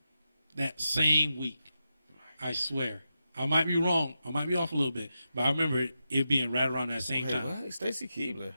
That same week. I swear. I might be wrong. I might be off a little bit. But I remember it being right around that same time. What? Stacy Keibler.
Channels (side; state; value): both; inverted; correlation -0.89